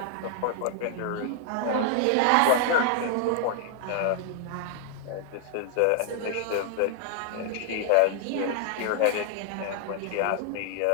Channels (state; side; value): different; both; correlation 0.00